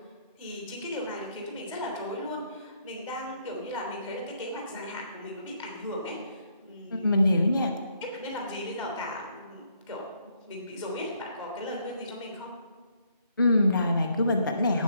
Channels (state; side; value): inverted; both; correlation -0.71